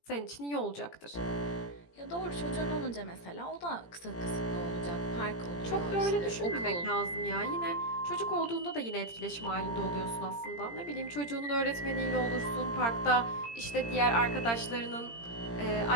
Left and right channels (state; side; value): late; right; 17 ms